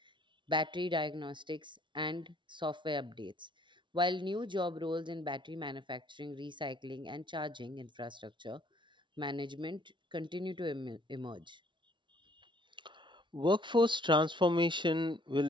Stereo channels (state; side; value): late; left; 0.24 ms